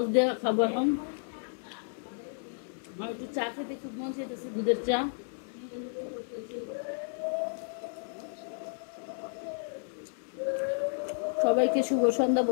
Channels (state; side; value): silent; right; 56 dB below the other